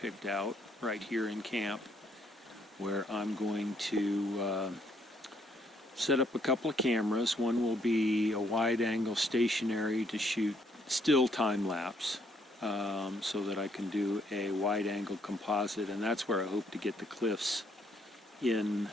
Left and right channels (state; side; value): normal; both; correlation 0.69